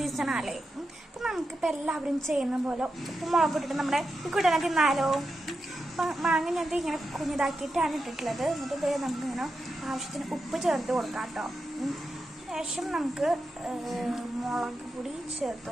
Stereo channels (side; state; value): both; normal; correlation 0.88